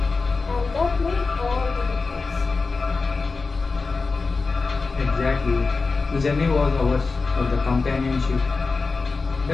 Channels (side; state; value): right; quieter; 4.2 dB